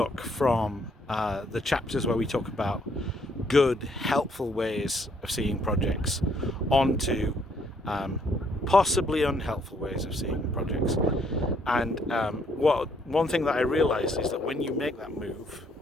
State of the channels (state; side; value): normal; both; correlation 0.68